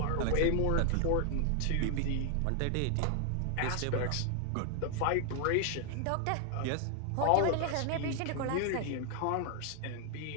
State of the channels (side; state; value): both; different; correlation 0.00